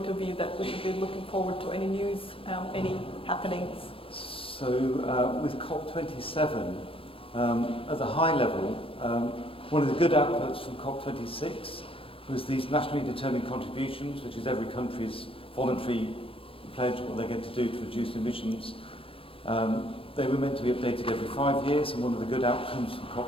of view that we should be looking forward to? Any news, any happenings? So with COP27, at the high level, one of the good outputs from COP26 was these nationally determined contributions, which is every country's voluntary pledge what they're going to do to reduce emissions. They were meant to be updated every 5 years, and one of the good outcomes from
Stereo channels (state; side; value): late; right; 0.26 ms